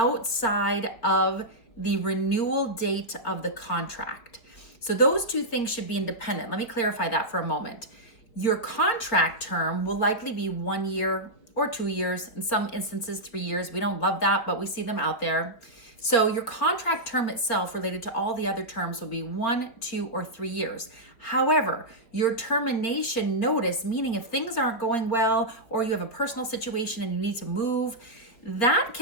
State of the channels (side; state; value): right; late; 4.4 ms